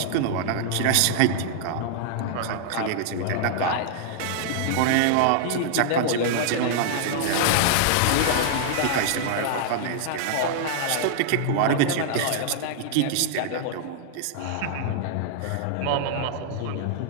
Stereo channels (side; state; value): both; different; correlation -0.01